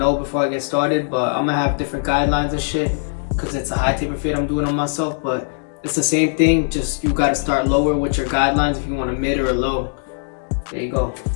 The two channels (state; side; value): silent; right; digital silence